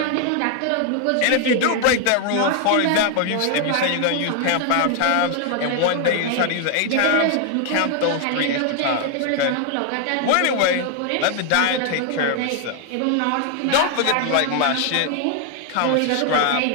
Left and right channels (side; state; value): both; different; correlation 0.00